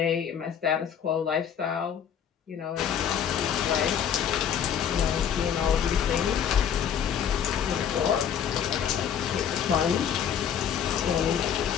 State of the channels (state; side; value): quieter; right; 8.5 dB